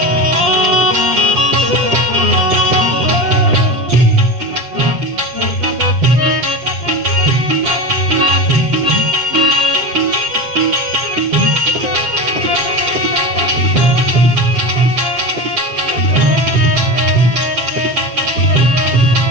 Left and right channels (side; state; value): left; late; 7.4 ms